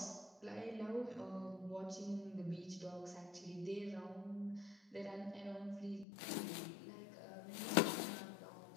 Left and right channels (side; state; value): right; drops out; at 6.1 s